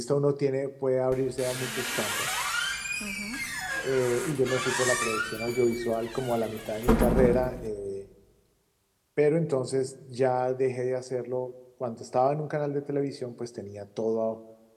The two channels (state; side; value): identical; both; correlation 1.00